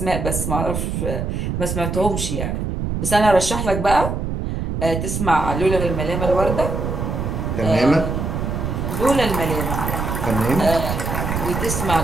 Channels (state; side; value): noise; right; rumble, 2 dB below the sound